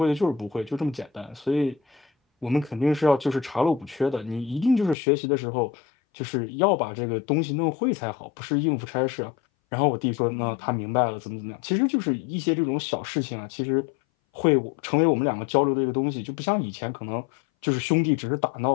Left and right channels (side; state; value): right; drops out; at 5.0 s